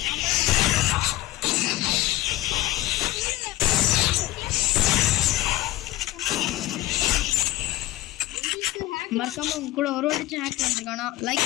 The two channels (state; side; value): quieter; right; 16.9 dB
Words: மறக்காம உங்க கூட ஒரு வாட்டி ஹேக் பண்ணிருக்கானா லைக்